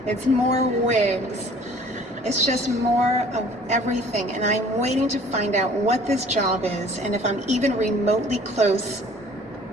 it's more wigs. It's just more of everything, and I'm waiting to find out what this job is and if I'm even remotely close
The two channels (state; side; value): normal; both; correlation 0.52